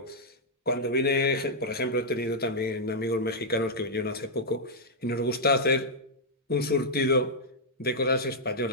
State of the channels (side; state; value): both; normal; correlation -0.07